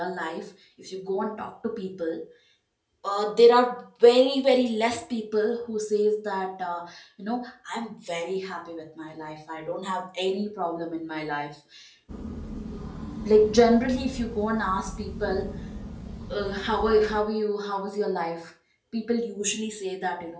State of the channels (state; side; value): identical; both; correlation 1.00